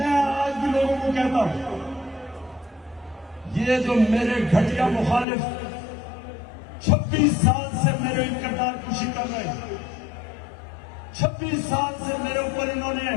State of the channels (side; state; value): right; drops out; at 5.2 s